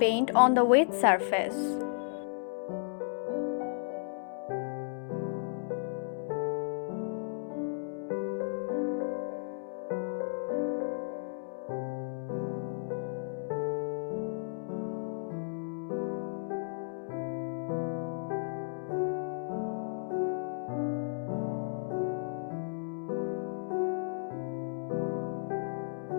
on the wet surface.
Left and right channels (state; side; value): silent; right; digital silence